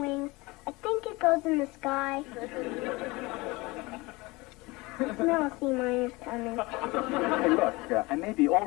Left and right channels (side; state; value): right; quieter; 23.4 dB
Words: I think it goes in the sky. Smell sea miners coming. Hey, look, I may be